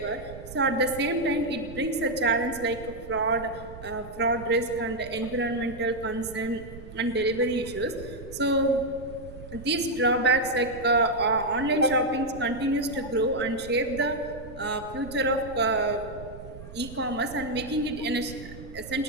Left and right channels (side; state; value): right; noise; rumble, 15 dB below the sound